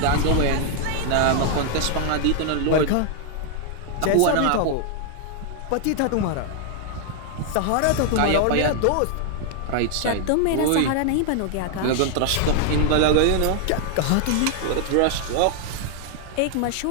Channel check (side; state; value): both; different; correlation 0.00